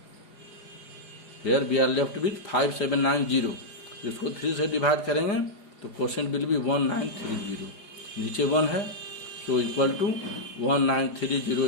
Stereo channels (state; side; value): late; right; 4.8 ms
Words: Here we are left with 5 7 9 0। इसको 3 से डिवाइड करेंगे तो क्वोशेंट विल बी 1930। नीचे 1 है, so equal to 1930